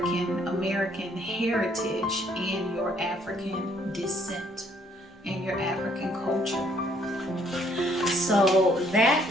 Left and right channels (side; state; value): both; normal; correlation 0.65